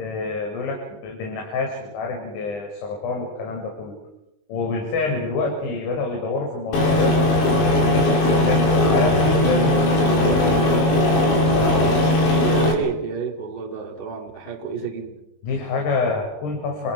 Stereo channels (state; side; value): late; right; 20 ms